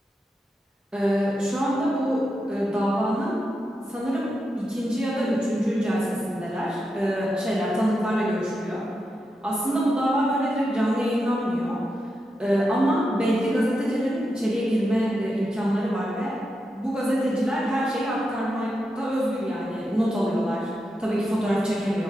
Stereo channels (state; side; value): normal; both; correlation 0.87